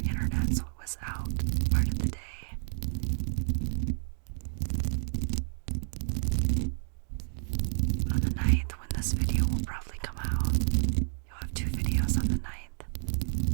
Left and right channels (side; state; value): left; silent; 58 dB below the other